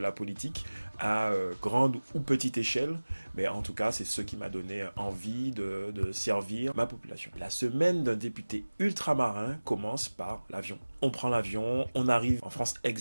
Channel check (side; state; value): both; inverted; correlation -1.00